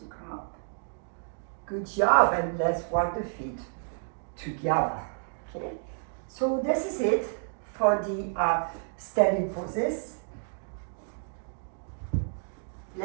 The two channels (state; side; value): silent; left; digital silence